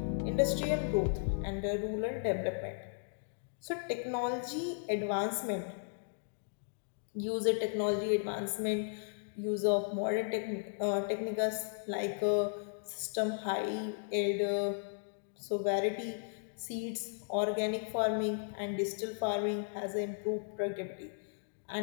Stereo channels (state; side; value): silent; right; digital silence